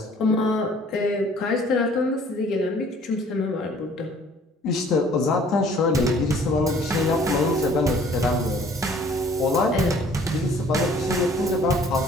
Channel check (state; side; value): normal; both; correlation 0.55